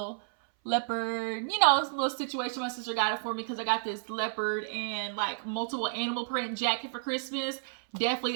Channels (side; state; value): left; silent; 57 dB below the other